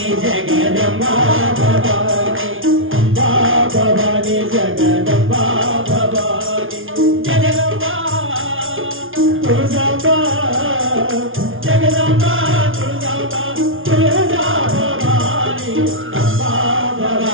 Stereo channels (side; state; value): left; late; 0.58 ms